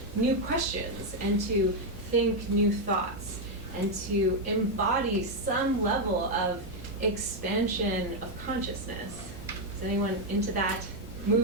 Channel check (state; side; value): noise; right; hum, 14 dB below the sound